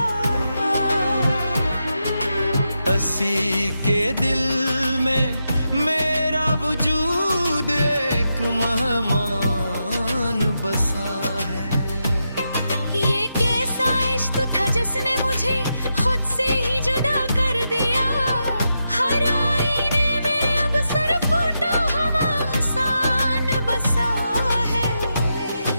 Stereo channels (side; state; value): both; inverted; correlation -0.86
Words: हंसी के दिल में मेरा वजूद एक मेहमान बसा है। ये कैसा इश्क था जिसने मुझे खुद से ही जुदा कर दिया। हर आईने में अब सर फूटा हम आसान बसा है।